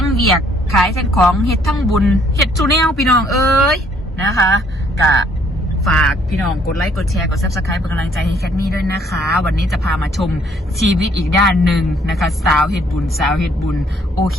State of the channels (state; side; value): normal; both; correlation 0.64